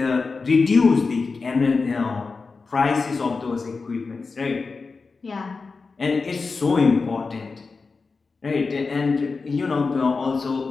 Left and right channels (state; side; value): quieter; right; 4.4 dB